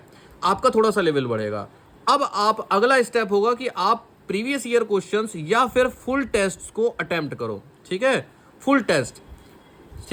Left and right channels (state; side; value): identical; both; correlation 1.00